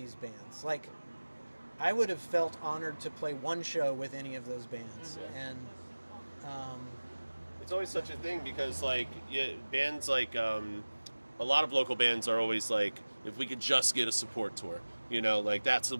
bands. Like, I would have felt honored to play one show with any of those bands. And it's always such a thing, because like bands like a lot of local bands are always like, if we could just get a support tour, you know, like that's the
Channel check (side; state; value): both; inverted; correlation -1.00